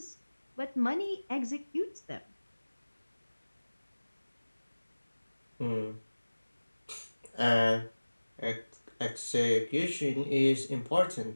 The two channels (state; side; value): inverted; both; correlation -1.00